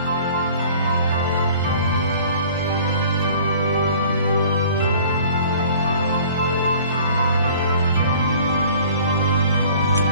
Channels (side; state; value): both; inverted; correlation -0.49